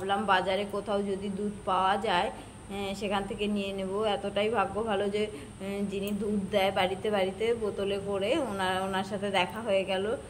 বাজারে কোথাও যদি দুধ পাওয়া যায় সেখান থেকে নিয়ে নেব। এতটাই ভাগ্য ভালো যে যিনি দুধ দেয় বাড়িতে বাড়িতে বোতলে করে, ওনার সাথে দেখা হয়ে গেল,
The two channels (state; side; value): identical; both; correlation 1.00